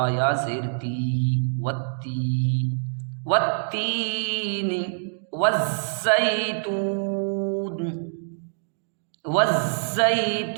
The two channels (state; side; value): silent; left; digital silence